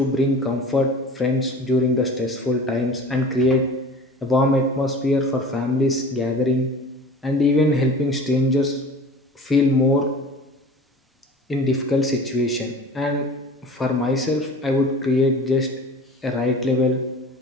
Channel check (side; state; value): both; normal; correlation 0.40